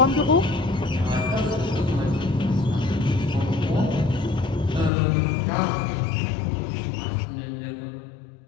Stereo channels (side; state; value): right; drops out; at 4.9 s